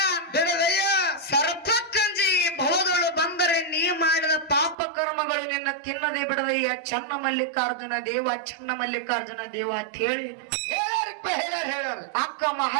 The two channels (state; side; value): drops out; left; at 4.8 s